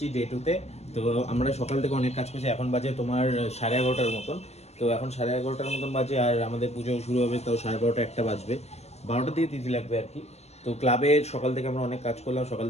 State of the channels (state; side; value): late; right; 0.31 ms